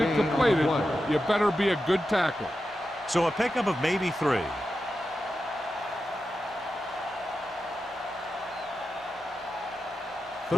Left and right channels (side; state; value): both; normal; correlation 0.90